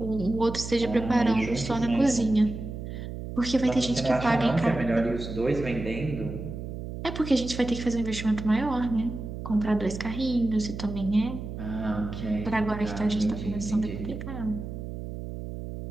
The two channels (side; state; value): right; noise; hum, 8 dB below the sound